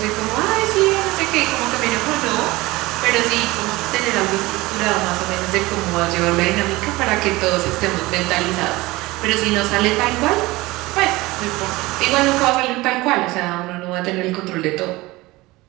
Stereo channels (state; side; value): quieter; left; 20.4 dB